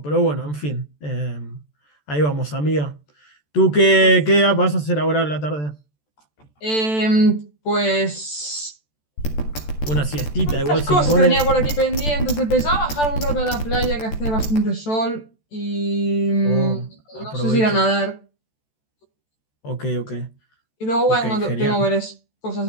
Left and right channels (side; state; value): right; late; 14 ms